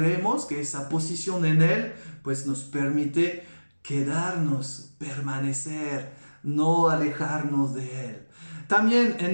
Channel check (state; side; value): inverted; both; correlation -1.00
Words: que esa posición en Él pues nos permite quedarnos, permanecer, no alejarnos de Él. También en